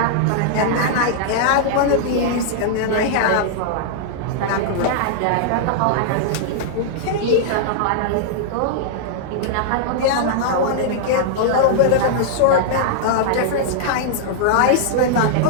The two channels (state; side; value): different; both; correlation -0.01